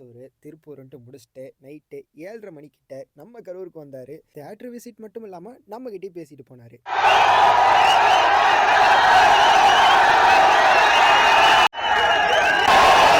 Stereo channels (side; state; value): both; identical; correlation 1.00